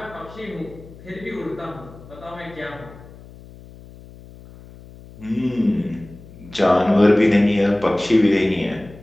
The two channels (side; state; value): left; noise; hum, 20 dB below the sound